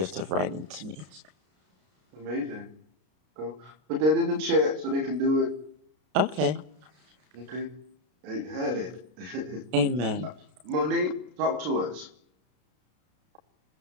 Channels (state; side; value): late; left; 33 ms